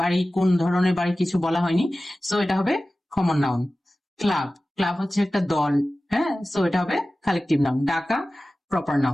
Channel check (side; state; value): both; normal; correlation 0.96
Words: বাড়ি কোন ধরনের বাড়ি কিছু বলা হয়নি, সো এটা হবে কমন নাউন। ক্লাব, ক্লাব হচ্ছে একটা দল, হ্যাঁ, সো এটা হবে কালেকটিভ নাউন। ডাকা প্রপার